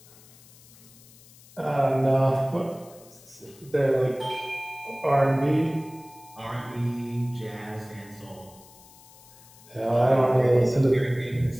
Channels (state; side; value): noise; left; hiss, 23 dB below the sound